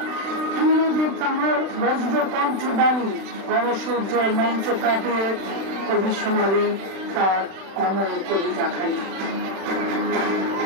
তীরদের তাহার বজ্র কণ্ঠ বাণী, গণসূর্যের মঞ্চ কাঁপিয়ে কবি শোনালেন তার অমর কবিতা খানি।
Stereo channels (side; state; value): left; late; 36 ms